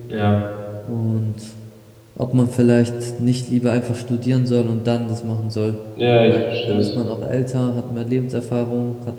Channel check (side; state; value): both; identical; correlation 1.00